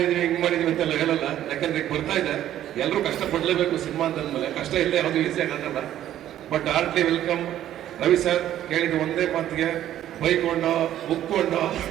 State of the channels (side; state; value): left; quieter; 12.0 dB